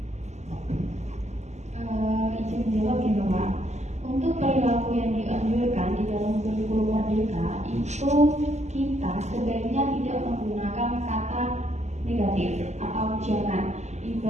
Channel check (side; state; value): left; late; 0.33 ms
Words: Izin jawab ya Pak. Untuk perilaku yang dianjurkan di dalam kurikulum Merdeka itu kita sebaiknya tidak menggunakan kata negatif atau jangan.